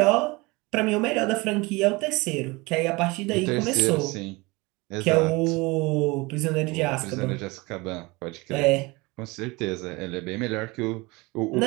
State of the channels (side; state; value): left; quieter; 24.3 dB